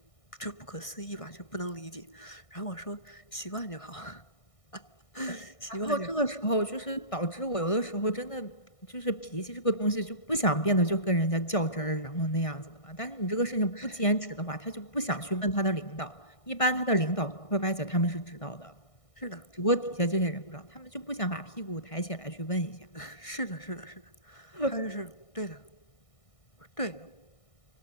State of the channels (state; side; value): late; right; 1.6 ms